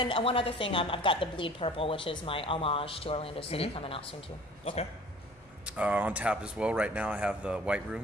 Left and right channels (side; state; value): left; noise; hum, 30 dB below the sound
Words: one other thing, I've got the Bleed Purple, which is my homage to Orlando City, coming out soon too. Okay. On tap as well right now, I have the White